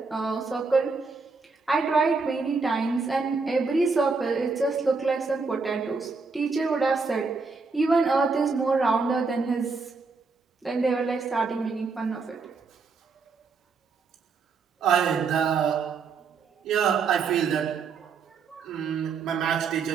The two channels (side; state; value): left; quieter; 4.6 dB